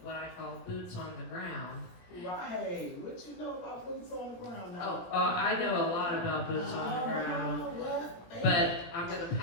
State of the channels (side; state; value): right; late; 17 ms